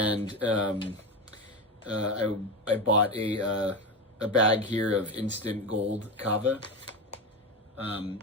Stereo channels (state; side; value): normal; both; correlation 0.18